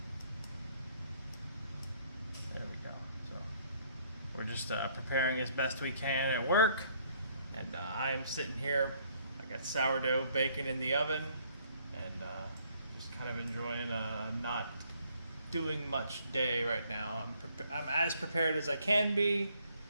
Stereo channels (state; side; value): inverted; both; correlation -0.65